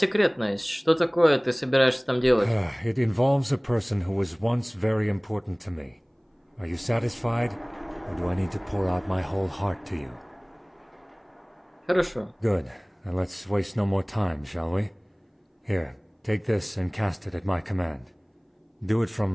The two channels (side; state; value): both; identical; correlation 1.00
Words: Что такое ты собираешься там делать? It involves a person who was once very important to me. Are you satisfied, or do I need to pour out my whole heart to you? Хорошо. Good. Now let's waste no more time, shall we? Here, take this and cast it at my command. Do it